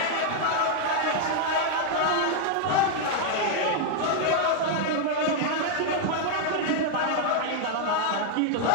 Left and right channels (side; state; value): both; different; correlation 0.00